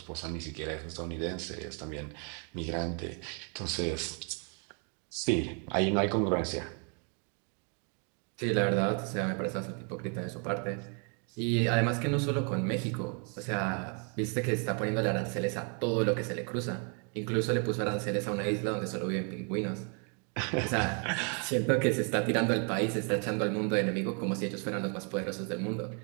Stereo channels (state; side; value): quieter; left; 38.8 dB